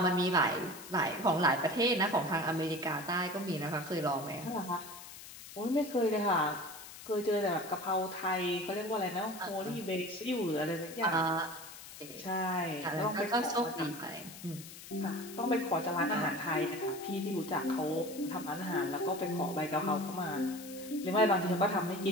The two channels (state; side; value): noise; left; hiss, 14 dB below the sound